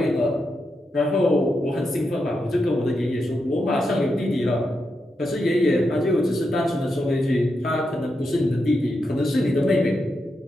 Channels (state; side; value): normal; both; correlation 0.85